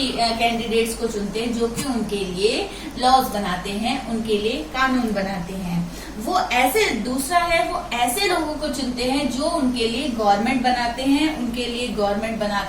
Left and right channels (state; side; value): identical; both; correlation 1.00